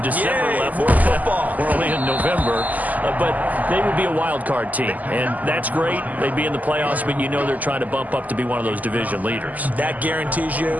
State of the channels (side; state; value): left; late; 0.079 ms